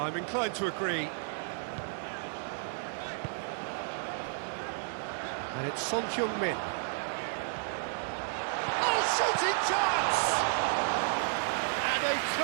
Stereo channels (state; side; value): silent; left; digital silence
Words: inclined to agree. And it's Son Heung-min. Oh, shooting chance! And a